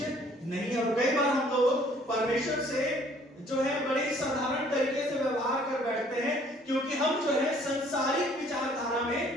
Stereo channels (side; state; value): both; normal; correlation 0.59